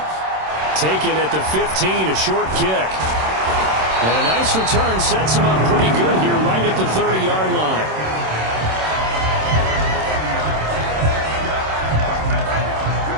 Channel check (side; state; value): left; late; 26 ms